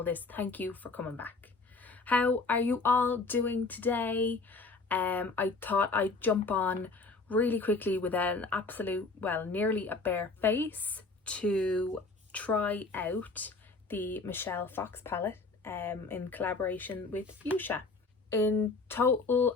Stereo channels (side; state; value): right; quieter; 3.8 dB